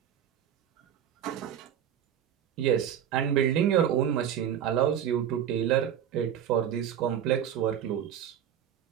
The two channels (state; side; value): quieter; left; 9.6 dB